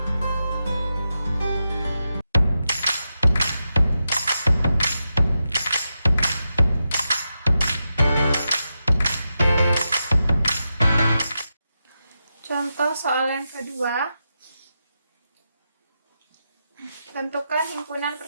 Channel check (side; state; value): both; inverted; correlation -0.88